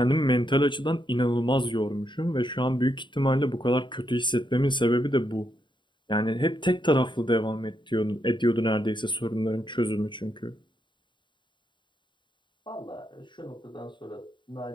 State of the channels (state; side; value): late; right; 0.23 ms